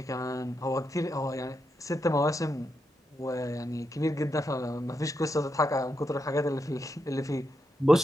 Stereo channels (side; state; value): both; normal; correlation 0.84